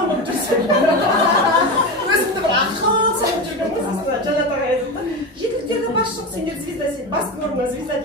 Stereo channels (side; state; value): both; normal; correlation 0.21